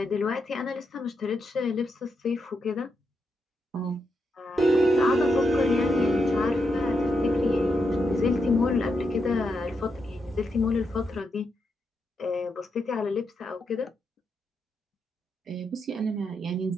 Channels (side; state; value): both; normal; correlation 0.83